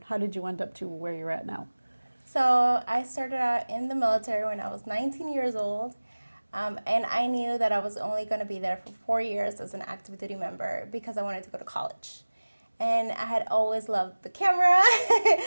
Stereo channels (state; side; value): inverted; both; correlation -1.00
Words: how did you end up to where you're at now? So I started out in the military when I was 19 years old. And I knew that I was only going to be there for 4 years as an active duty member because I wanted to go to college. And I had always loved the camera